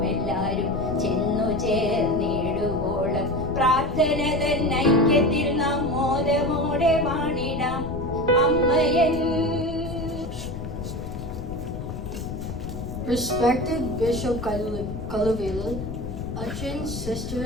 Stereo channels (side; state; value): left; noise; rumble, 8 dB below the sound